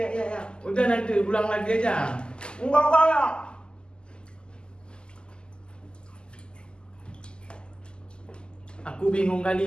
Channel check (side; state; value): right; late; 0.048 ms